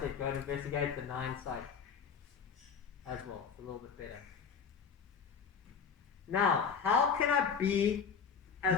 go and investigate the 9 sites as well. It's a little bit better. Now, how can I be as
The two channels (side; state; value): right; quieter; 6.2 dB